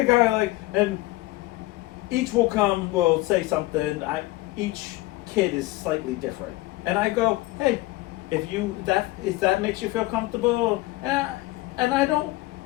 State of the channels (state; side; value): quieter; right; 19.3 dB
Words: go like, and each will say something. Each kid is slightly different, and I go, hey, if that makes you feel comfortable, and I don't